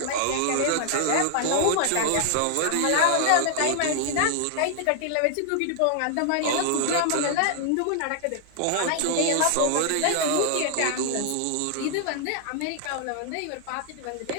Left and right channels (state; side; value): different; both; correlation 0.00